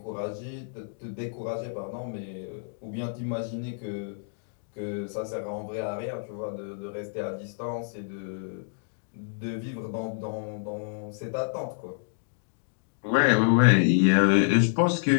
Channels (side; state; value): right; silent; digital silence